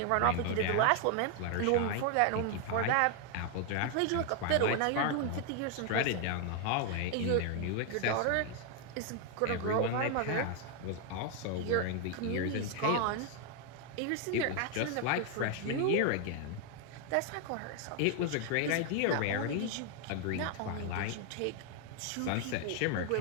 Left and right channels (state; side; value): different; both; correlation 0.01